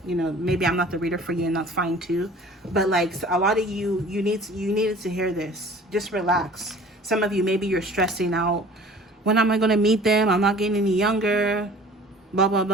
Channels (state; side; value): normal; both; correlation 0.47